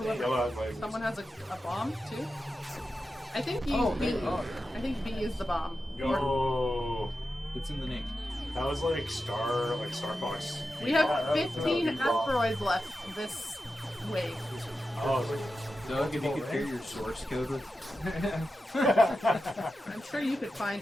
has a bomb too. I think B. Oh, B. oh. I think B is the bomb. Yo, It's in the name. that was like Star Fox. We have Yeah, that was 15 a bomb. asteroids left this wave. Oh, Doug, if you could share your source code with. I'm sure you could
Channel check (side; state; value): both; normal; correlation 0.91